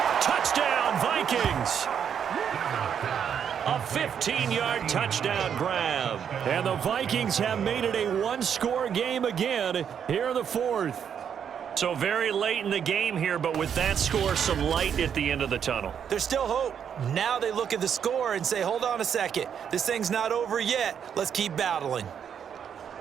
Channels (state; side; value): quieter; left; 8.1 dB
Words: Touchdown, Vikings. A 15-yard touchdown grab. And the Vikings have made it a one-score game again here in the fourth. So very late in the game here, but with that score, some light at the end of the tunnel. There's still hope. Now they look at the score and say, hold on a second. This thing's not over yet. Let's keep battling.